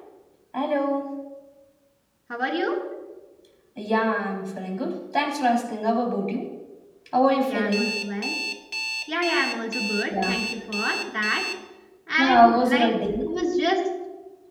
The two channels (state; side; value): identical; both; correlation 1.00